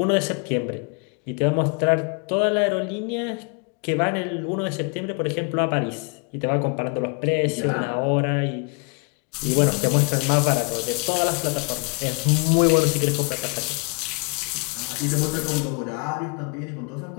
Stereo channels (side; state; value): right; quieter; 33.9 dB